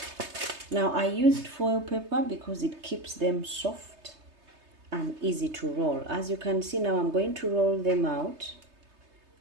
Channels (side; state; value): left; late; 3.3 ms